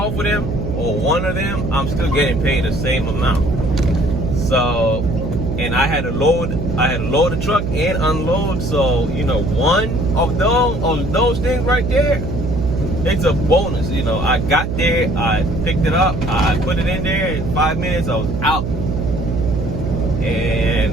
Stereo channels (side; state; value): right; noise; hum, 4 dB below the sound